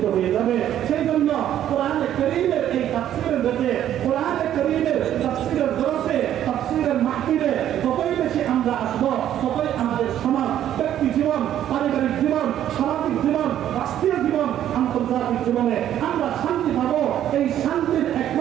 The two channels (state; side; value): quieter; left; 11.2 dB